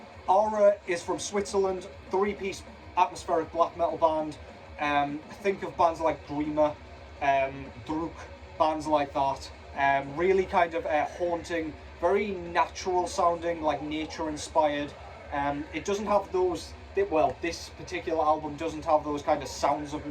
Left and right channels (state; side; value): identical; both; correlation 1.00